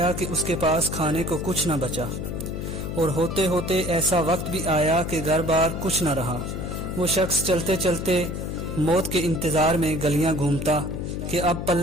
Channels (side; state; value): left; noise; hum, 5 dB below the sound